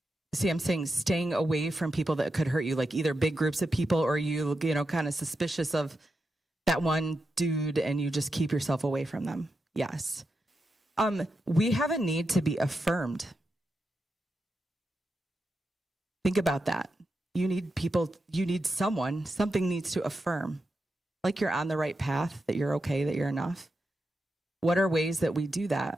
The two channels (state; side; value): normal; both; correlation 0.87